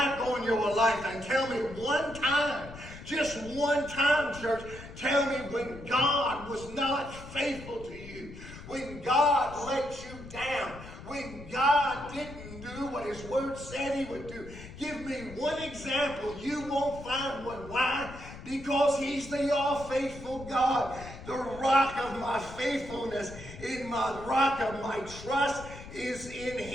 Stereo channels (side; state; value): left; noise; rumble, 14 dB below the sound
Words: on your life and tell me one time, just one time, church, tell me when God was not faithful to you. When God let you down, when God didn't do what his word said he would do. Give me one example. You won't find one. Why? Because he's the all-faithful God, the rock of my faithfulness, in my rock of my trust is in